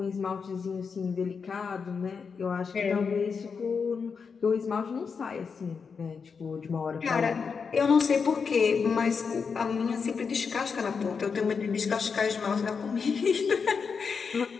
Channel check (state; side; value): quieter; right; 5.7 dB